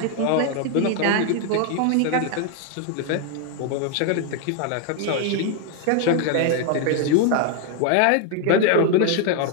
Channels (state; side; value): different; both; correlation 0.00